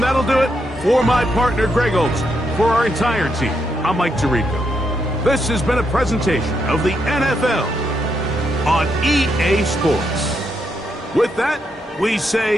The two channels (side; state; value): both; normal; correlation 0.80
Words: that'll do it for my partner, Greg Olsen. For our entire team, I'm Mike Tirico. This has been a presentation of the NFL on EA Sports. With that, we